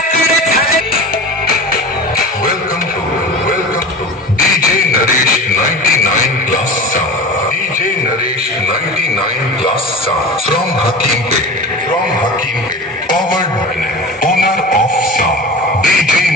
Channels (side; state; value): both; normal; correlation 0.33